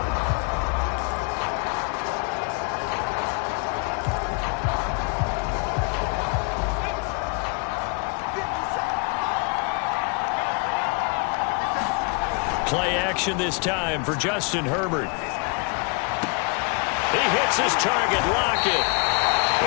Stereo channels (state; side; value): quieter; right; 33.2 dB